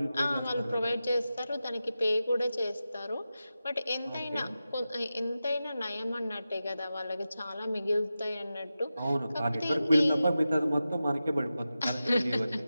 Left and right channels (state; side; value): inverted; both; correlation -0.93